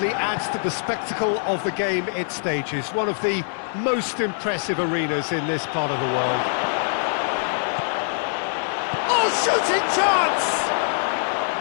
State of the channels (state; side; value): silent; right; 63 dB below the other